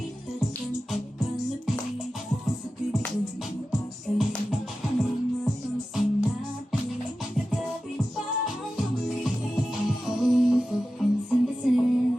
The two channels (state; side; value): normal; both; correlation 0.93